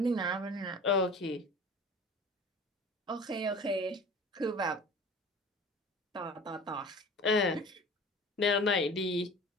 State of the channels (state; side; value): normal; both; correlation 0.41